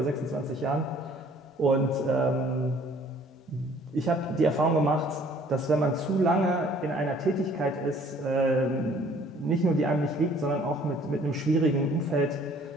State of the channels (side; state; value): both; normal; correlation 0.57